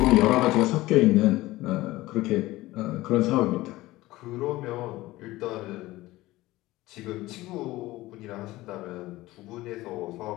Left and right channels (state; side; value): quieter; right; 18.1 dB